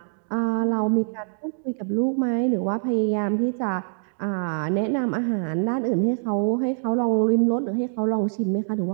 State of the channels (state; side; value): silent; left; 61 dB below the other